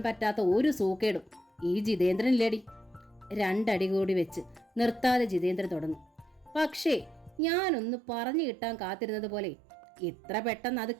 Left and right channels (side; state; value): left; drops out; at 7.4 s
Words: പറ്റാത്ത ഒരു സൂക്കേടും ഈ ജിതേന്ദ്രനില്ലേടി. 2 അടി കൂടി വെച്ച് നിർത്താതെ ജിതേന്ദ്രൻ തുടർന്നു. പക്ഷേ ഞാനൊന്ന് പറഞ്ഞു കിട്ടാൻ കാത്തിരുന്നത് പോലെ ഇത്ര പെട്ടെന്ന് അത്